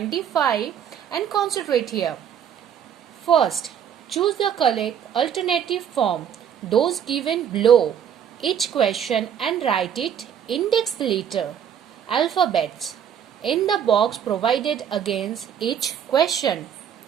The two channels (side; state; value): left; quieter; 8.7 dB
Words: and concentrate here. First, choose the correct alternative form, those given below each question and write it index letter, alphabets in the box provided against each question.